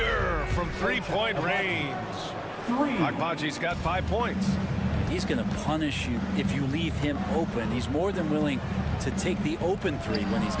from 3-point range. Abaji's got 5 points. He's going to punish you if you leave him open. He's more than willing to take the open 3 when he's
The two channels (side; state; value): both; identical; correlation 1.00